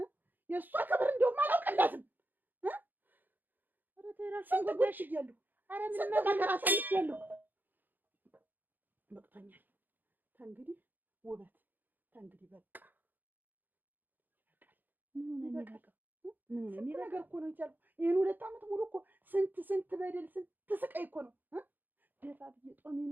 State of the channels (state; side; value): late; left; 0.088 ms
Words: የእሷ ክብር እንደውም አላውቅላትም። ኧረ ተይ እራስሽን ጎዳሽ እያለሁ ኧረ ስንት ነገር አሳልፌያለሁ። በቅቶኛል። ተንግዲህ ውበት ተንግዲህ በቃ ስንት ነገር እኮ ነው የቻልኩት። ይህን 2 ዓመት ሙሉ እኮ ስንት በደል ስንት ስቃይ እኮ ነው ደፋ ብዬ